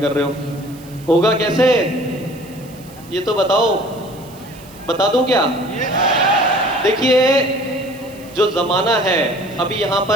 कर रहे हो। होगा कैसे ये तो बताओ, बता दूं क्या? देखिए, जो ज़माना है अभी यहाँ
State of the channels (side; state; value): right; noise; hiss, 23 dB below the sound